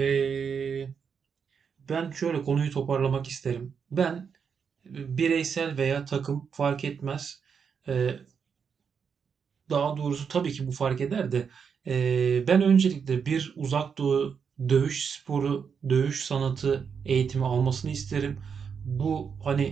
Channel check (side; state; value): left; quieter; 6.5 dB